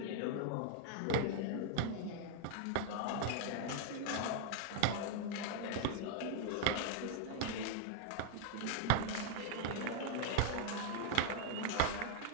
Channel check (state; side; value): different; both; correlation 0.00